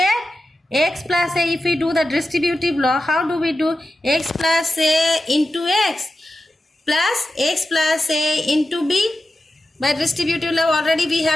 X plus a, if we do the distributive law, how do we do? X plus a into x plus a into b. By distributive law already we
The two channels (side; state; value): both; normal; correlation 0.91